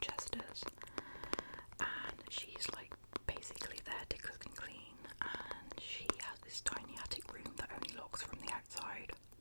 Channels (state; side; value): inverted; both; correlation -1.00